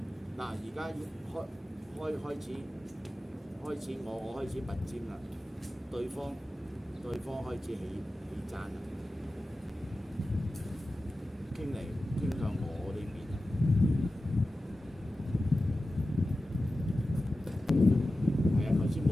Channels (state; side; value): normal; both; correlation 0.94